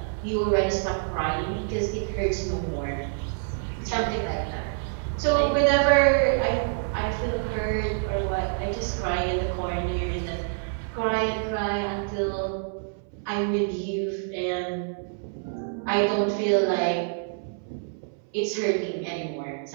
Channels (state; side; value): silent; left; 60 dB below the other